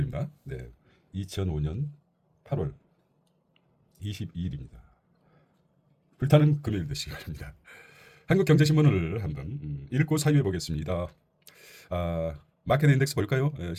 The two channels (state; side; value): identical; both; correlation 1.00